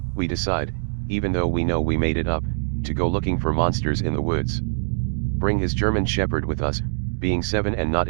We decide, even though we know we made it up, to go looking for monsters in the woods. Bring his German Shepherd with us, being 7 and not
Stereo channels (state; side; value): silent; left; digital silence